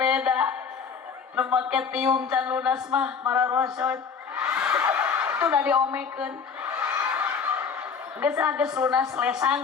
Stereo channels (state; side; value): quieter; right; 6.0 dB